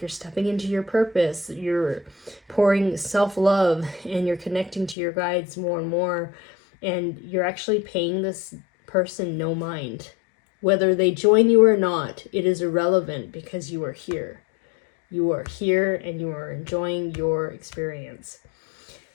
stepping into your purpose, you're pouring self-love, and you're connecting to your guides more and more, and you're actually paying this person no mind. Whether they join you or not, it is irrelevant because you are here. You are here and you are enjoying your experience.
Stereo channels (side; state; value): right; drops out; at 5.0 s